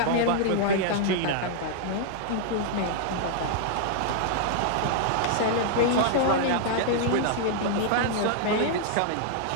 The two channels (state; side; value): different; both; correlation -0.01